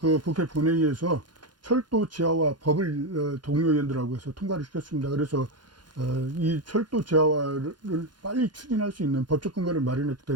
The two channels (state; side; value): late; left; 0.71 ms